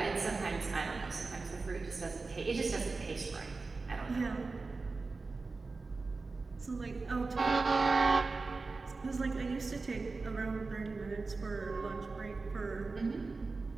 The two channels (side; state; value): left; quieter; 3.9 dB